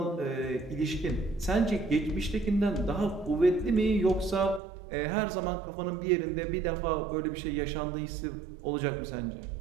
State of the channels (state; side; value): drops out; left; at 4.6 s